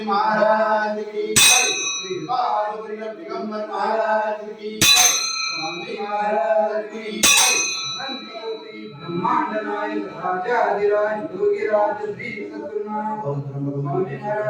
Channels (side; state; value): both; identical; correlation 1.00